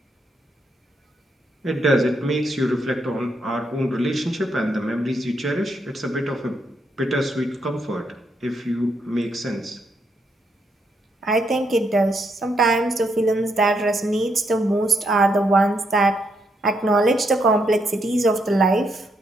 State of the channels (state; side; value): normal; both; correlation 0.78